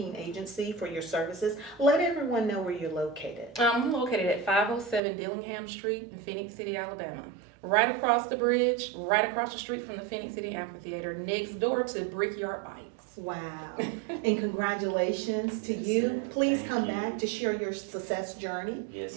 Agency, for your services. Let everyone know where you're located. I'm located at 507 Dillingham Street in Phoenix City, Alabama. Right across the bridge, right across the street from the Phoenix City Amphitheater, next door to Brickyard Bikes. Wow. And congratulations to you. Please Thank come you. back to share your success journey.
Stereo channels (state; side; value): drops out; left; at 5.0 s